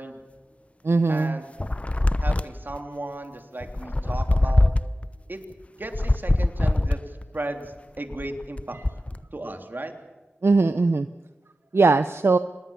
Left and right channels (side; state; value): both; normal; correlation 0.93